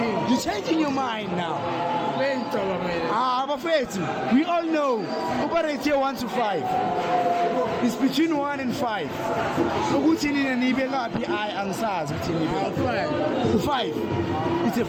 You're changing your mind now. Ngicabangela. Bafethu, we all know. Operate here 1 to 5. It's between 1 and 5. Ukuthi nina nibe ngaphi angisazi ukuthi nibe. 5. It's a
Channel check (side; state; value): both; identical; correlation 1.00